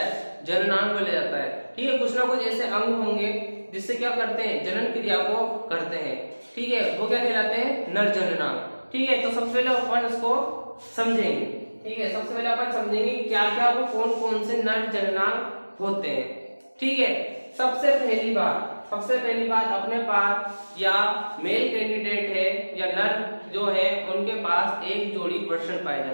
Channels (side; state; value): both; inverted; correlation -1.00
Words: जननांग बोला जाता है। ठीक है, कुछ ना कुछ ऐसे अंग होंगे जिससे क्या करते हैं, जनन क्रिया को करते हैं। ठीक है, वो क्या कहलाते हैं, नर जननांग। ठीक है, तो सबसे पहले अपन इसको समझेंगे। ठीक है, सबसे पहले अपन समझेंगे क्या क्या वो कौन कौन से नर जननांग होते हैं। ठीक है, सबसे पहली बात अपने पास या मेल कैंडिडेट है या नर जो है उनके पास एक जोड़ी वृषण पाए